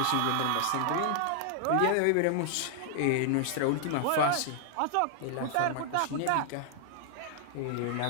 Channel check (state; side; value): different; both; correlation -0.01